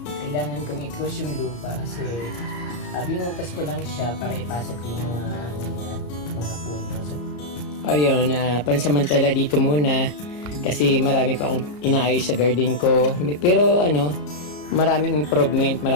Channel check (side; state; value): right; late; 34 ms